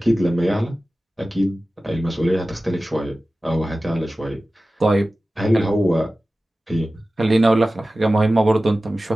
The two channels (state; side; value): normal; both; correlation 0.96